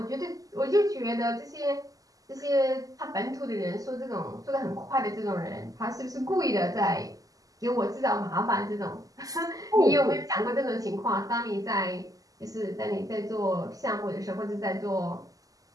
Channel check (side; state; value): left; late; 0.17 ms